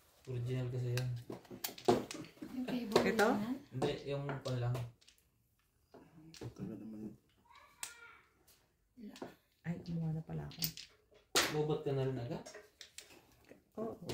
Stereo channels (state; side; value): identical; both; correlation 1.00